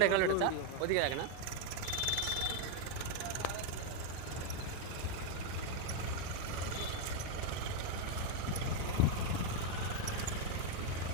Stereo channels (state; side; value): different; both; correlation 0.01